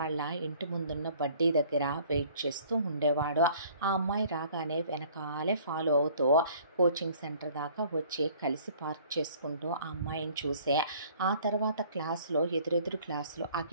ఇంటి ముందున్న బడ్డీ దగ్గర వెయిట్ చేస్తూ ఉండేవాడు. ఆ అమ్మాయి రాగానే వెనకాలే ఫాలో అవుతూ కోచింగ్ సెంటర్ దాకా వచ్చి కలిసి పార్క్ చేసుకుంటూ ఆ అమ్మాయిని చూసే, ఆ తర్వాత క్లాసులో ఎదురెదురు క్లాసులో ఆ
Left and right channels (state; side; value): inverted; both; correlation -0.54